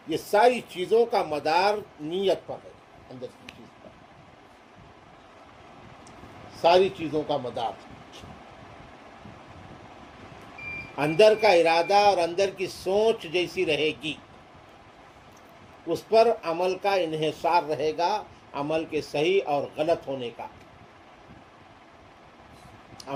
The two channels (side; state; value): both; identical; correlation 1.00